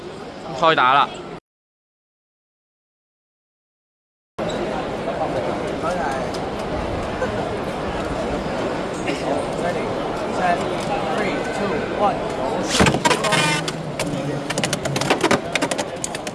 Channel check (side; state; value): both; identical; correlation 1.00